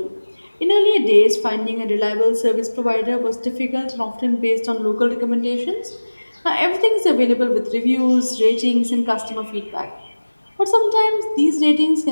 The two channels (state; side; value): inverted; both; correlation -1.00